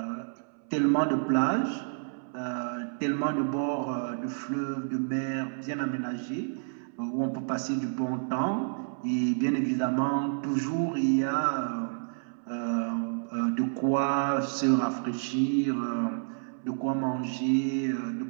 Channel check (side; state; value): left; silent; 58 dB below the other